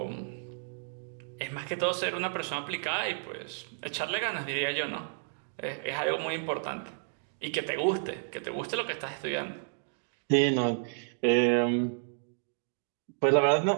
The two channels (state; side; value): silent; left; digital silence